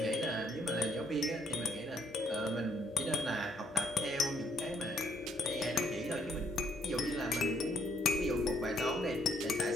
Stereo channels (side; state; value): both; normal; correlation 0.69